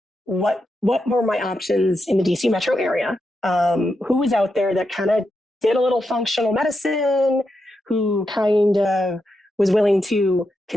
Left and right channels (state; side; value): normal; both; correlation 0.86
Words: what were my options in the DC metro area. who was out there that kind of did a little functional medicine, who kind of was willing to